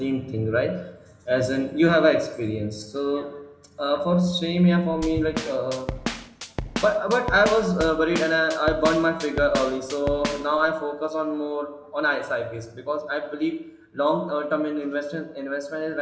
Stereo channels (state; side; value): identical; both; correlation 1.00